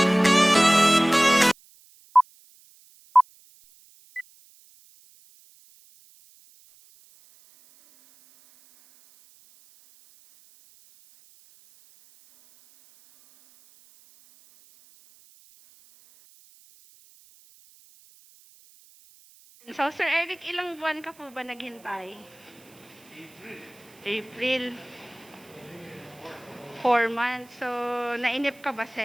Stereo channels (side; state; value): right; noise; hiss, 28 dB below the sound